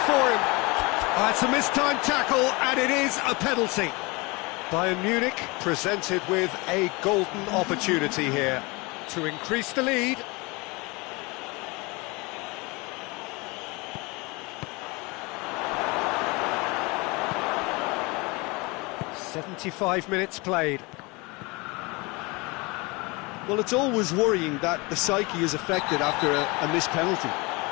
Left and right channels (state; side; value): quieter; right; 26.1 dB